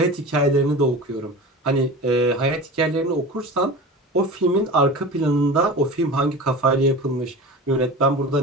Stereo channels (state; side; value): normal; both; correlation 0.33